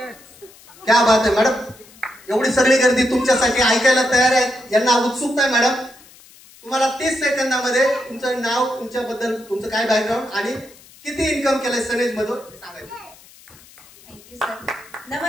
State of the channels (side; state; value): left; noise; hiss, 24 dB below the sound